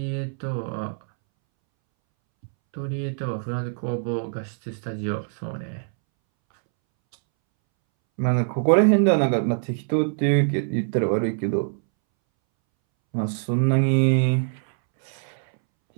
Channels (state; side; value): silent; left; 63 dB below the other